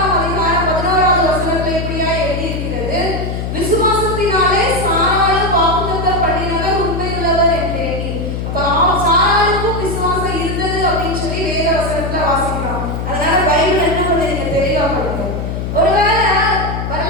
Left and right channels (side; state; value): left; noise; hum, 4 dB below the sound